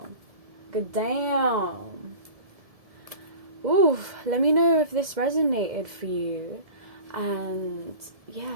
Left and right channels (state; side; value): late; left; 1.7 ms